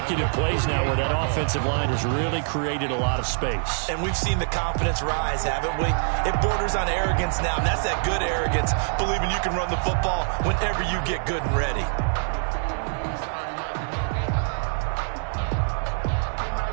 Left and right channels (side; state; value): left; silent; 57 dB below the other